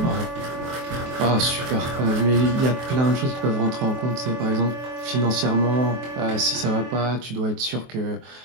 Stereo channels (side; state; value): left; late; 23 ms